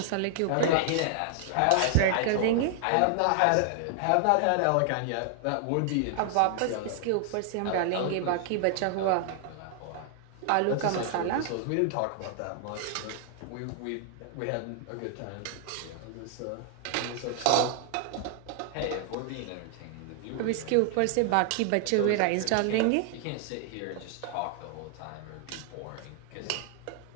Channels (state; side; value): different; both; correlation 0.00